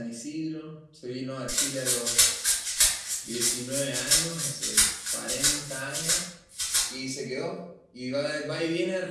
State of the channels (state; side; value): identical; both; correlation 1.00